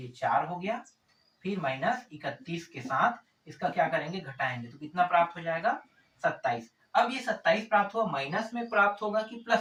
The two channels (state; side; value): identical; both; correlation 1.00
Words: 4 हो गया। फिर -31 के साथ इसका क्या करेंगे, घटाएंगे तो कितना प्राप्त हो जाएगा 27। अब ये 27 प्राप्त हुआ, माइनस में प्राप्त होगा कि